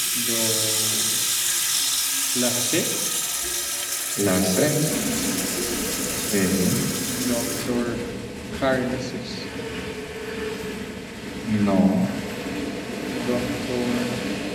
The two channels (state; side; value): identical; both; correlation 1.00